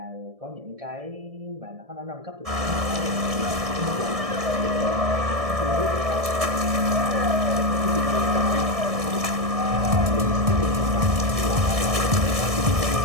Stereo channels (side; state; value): left; late; 1.6 ms